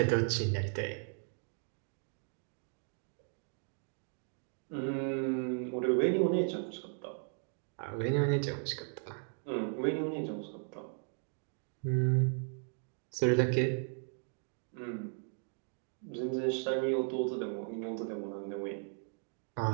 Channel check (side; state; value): left; silent; 54 dB below the other